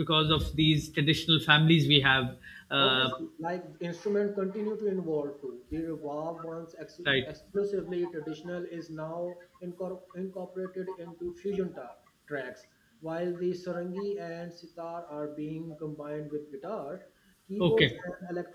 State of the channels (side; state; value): both; identical; correlation 1.00